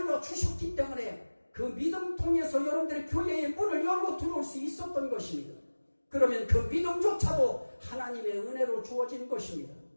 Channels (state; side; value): inverted; both; correlation -1.00